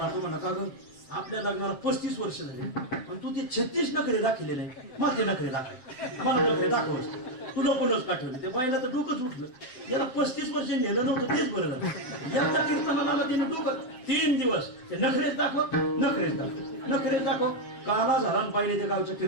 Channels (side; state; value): right; late; 7.7 ms